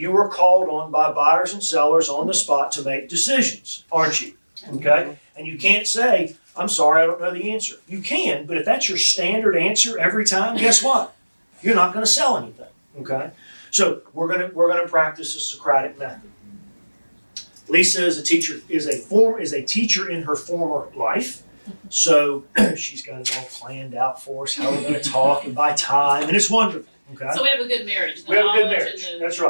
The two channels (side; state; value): both; inverted; correlation -1.00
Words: are called on by buyers and sellers on the spot to make decisions, aren't you? Okay? And you can't say, "I'm sorry, I don't know the answer." You can, but if that's your standard answer every time, guess what? You're not going to sell anything, okay? So we're gonna practice the Socratic Method. Lisa is a teacher in her former life, so she's got it all planned out for us, how we're going to talk and by time, and it's wonderful. Okay. So we have a good marriage. We have a good marriage. That's